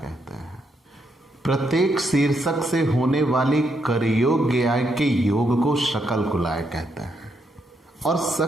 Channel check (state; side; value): normal; both; correlation 0.78